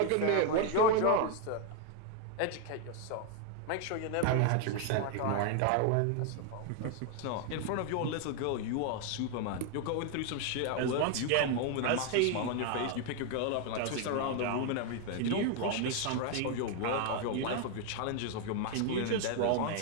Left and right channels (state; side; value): different; both; correlation 0.01